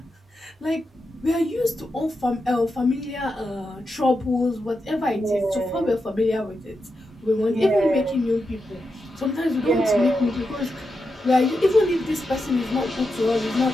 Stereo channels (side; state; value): both; normal; correlation 0.87